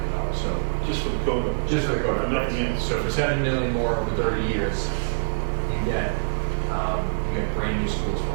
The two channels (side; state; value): left; silent; 62 dB below the other